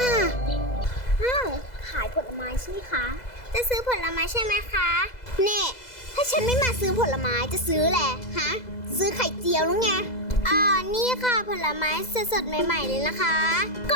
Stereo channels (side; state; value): right; late; 2.0 ms